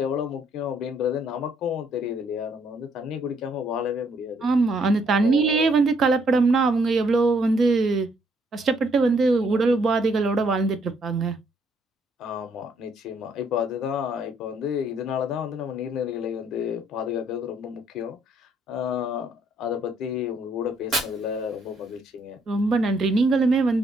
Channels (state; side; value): normal; both; correlation 0.69